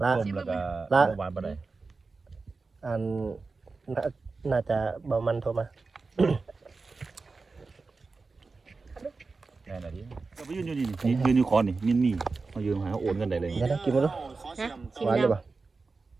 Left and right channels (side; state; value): left; quieter; 4.1 dB